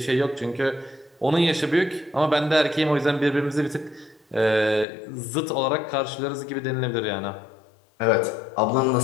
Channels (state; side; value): drops out; right; at 4.9 s